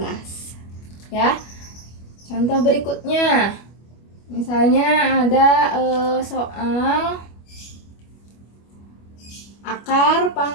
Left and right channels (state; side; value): late; right; 25 ms